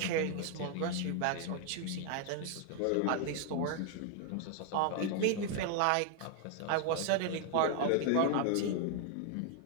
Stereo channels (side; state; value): both; different; correlation 0.00